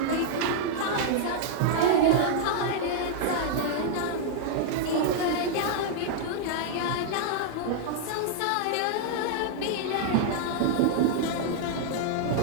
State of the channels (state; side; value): different; both; correlation -0.01